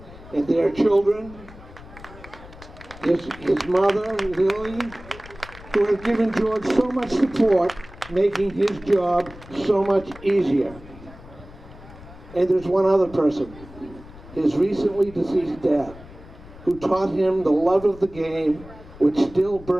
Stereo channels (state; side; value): noise; left; rumble, 18 dB below the sound